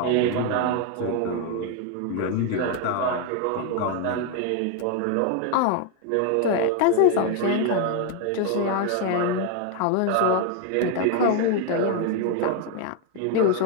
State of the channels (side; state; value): both; different; correlation 0.01